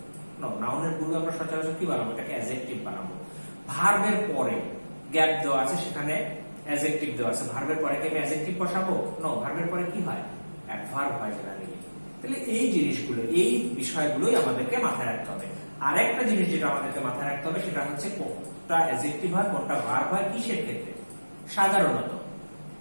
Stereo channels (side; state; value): both; inverted; correlation -1.00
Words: নো, নাউনের পূর্বে আমরা সচরাচর কি বানাবো? এটাকে অ্যাডজেক্টিভ বানাবো। ভার্বের পরে গ্যাপ দেওয়া আছে, সেখানে অ্যাডজেক্টিভ দেওয়া আছে, ভার্বের পরে কি আমি অ্যাডজেক্টিভ বসাবো? নো, ভার্বের পরে কি হয়? অ্যাডভার্ব হয় জেনারেলি। তাহলে এই জিনিসগুলো, এই বিষয়গুলোই আমাদেরকে মাথায় রাখতে হবে। আরেকটা জিনিস যেটা আমাদেরকে মাথায় রাখতে হবে সেটা হচ্ছে কোনটা অ্যাডজেক্টিভ হয়, কোনটা ভার্ব হয়, কিসের ক্ষেত্রে। সাধারণত